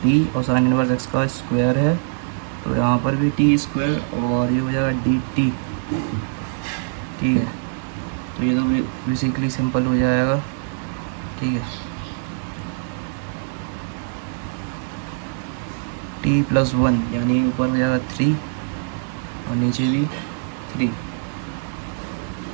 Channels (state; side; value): silent; left; digital silence